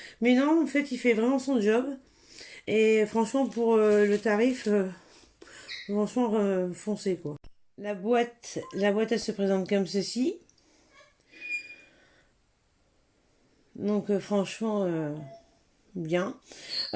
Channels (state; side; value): identical; both; correlation 1.00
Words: Mais non, en fait, il fait vraiment son job. Et franchement, pour le tarif, franchement, foncez quoi. La boîte, elle se présente comme ceci. Donc, franchement, bien.